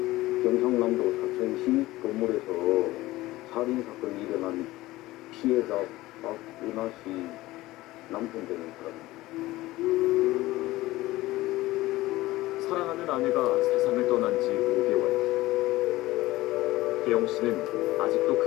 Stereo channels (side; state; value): right; quieter; 18.0 dB